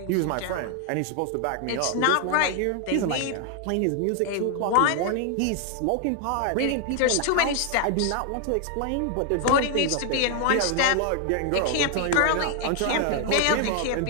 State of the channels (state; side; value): different; both; correlation 0.00